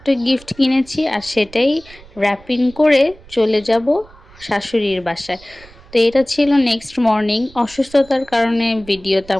গিফট কিনেছি, আর সেটাই র্যাপিং করে চলে যাব শাশুড়ির বাসায়। তো এটা ছিল নেক্সট মর্নিং। অসুস্থতার কারণে ভিডিও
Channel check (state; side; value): noise; right; rumble, 23 dB below the sound